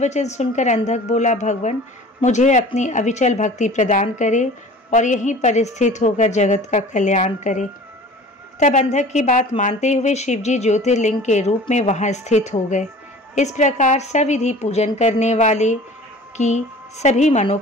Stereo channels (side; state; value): both; normal; correlation 0.43